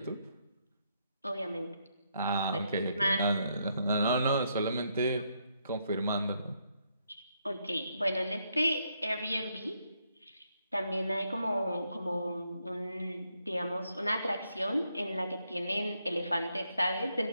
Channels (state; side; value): inverted; both; correlation -0.77